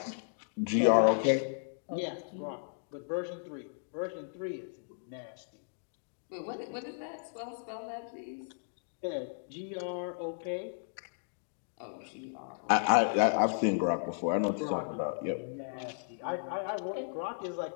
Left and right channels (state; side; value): silent; right; digital silence